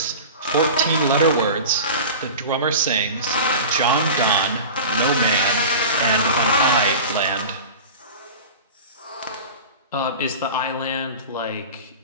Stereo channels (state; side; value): inverted; both; correlation -0.33